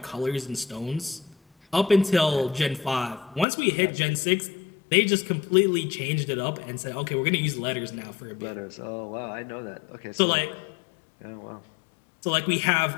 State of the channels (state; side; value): drops out; right; at 3.5 s